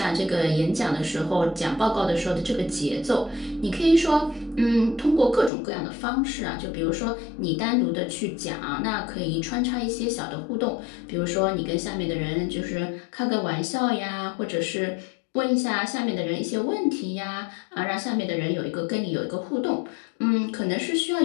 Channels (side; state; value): right; drops out; at 5.5 s